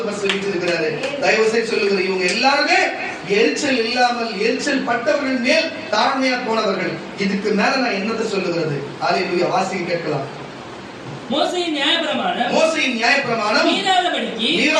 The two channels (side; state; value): both; identical; correlation 1.00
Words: பக்கத்தில் வீற்றிருக்கிறாரு. தயவு செய்து சொல்லுகிறேன், இவங்க எல்லாருமே எரிச்சல் இல்லாமல் எரிச்சல் பட்டவர்கள் மேல் தாழ்மையா போனவர்கள். இதுக்கு மேல நான் என்னத்தை சொல்லுகிறது? அல்லேலூயா. வாசிக்க கேட்கலாம். மோசேயின் நியாயப்பிரமாணம்